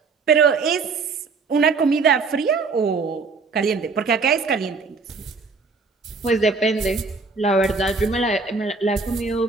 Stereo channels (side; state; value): left; quieter; 4.5 dB